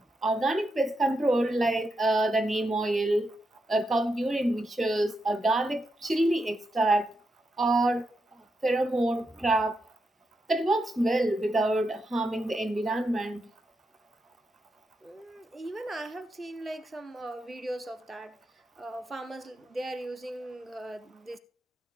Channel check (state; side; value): normal; both; correlation 0.84